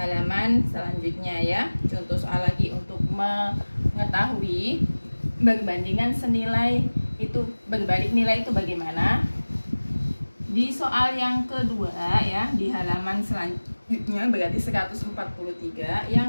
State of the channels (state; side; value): inverted; both; correlation -1.00